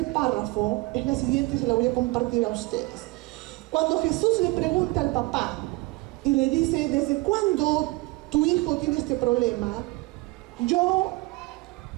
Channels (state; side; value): quieter; left; 22.5 dB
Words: párrafo es la siguiente y se la voy a compartir a ustedes. Cuando Jesús le pregunta al papá y le dice: ¿desde cuándo tu hijo tiene este problema?, yo